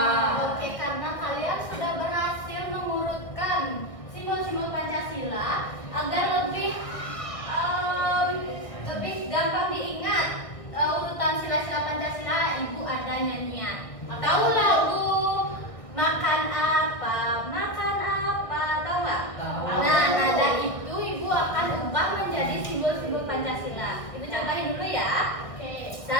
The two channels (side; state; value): right; late; 1.6 ms